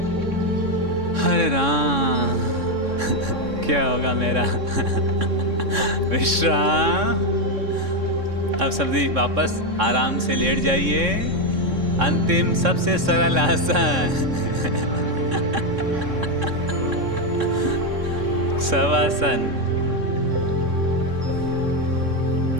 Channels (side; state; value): left; late; 3.6 ms